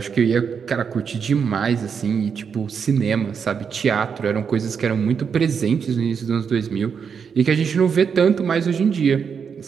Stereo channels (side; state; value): left; quieter; 6.5 dB